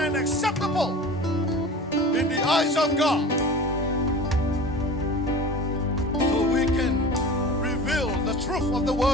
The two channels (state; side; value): normal; both; correlation 0.36